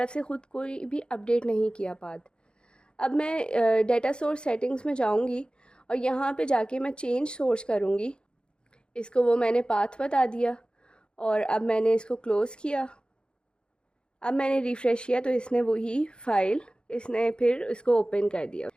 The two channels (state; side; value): late; right; 0.051 ms